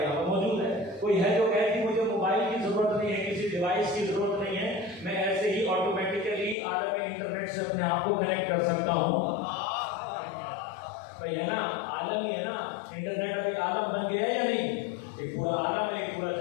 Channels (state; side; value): drops out; right; at 6.6 s